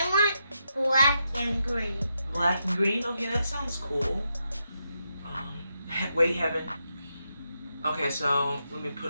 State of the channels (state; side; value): inverted; both; correlation -0.84